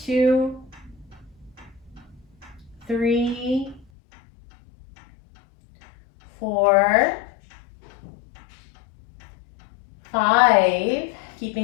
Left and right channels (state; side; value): drops out; right; at 3.9 s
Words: 2, 3, 4, 5.